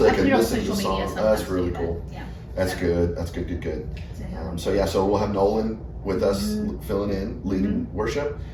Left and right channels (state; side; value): identical; both; correlation 1.00